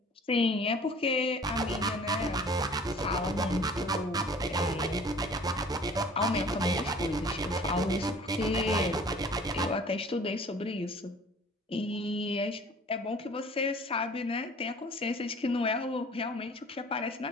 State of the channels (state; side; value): normal; both; correlation 0.49